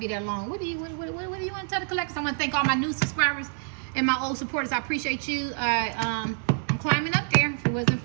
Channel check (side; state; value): left; silent; 57 dB below the other